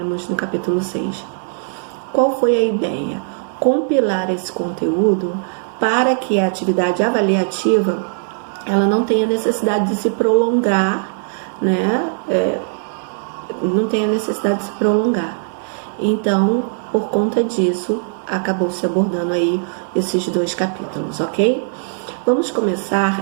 no capítulo 6. Qual foi a ideia? Compilar esse conteúdo para que a atividade avaliativa ela não tenha necessidade de se prolongar, né? Não tenha necessidade de se prolongar. Então, por conta disso, acabou se abordando aí esses 2 capítulos, ok? Vamos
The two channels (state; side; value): silent; left; 67 dB below the other